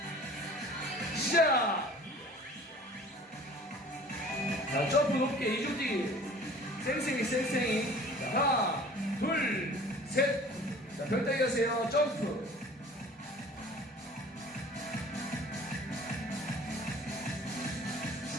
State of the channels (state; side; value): normal; both; correlation 0.47